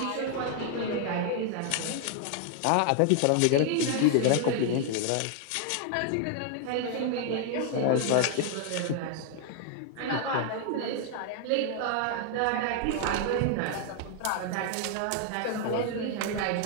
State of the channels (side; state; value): both; different; correlation 0.00